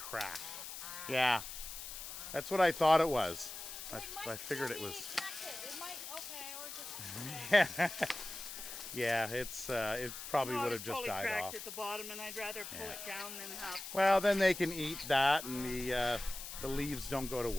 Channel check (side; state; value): left; noise; hiss, 9 dB below the sound